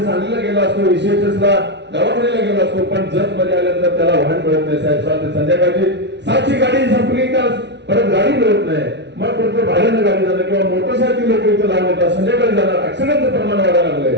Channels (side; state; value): left; late; 0.50 ms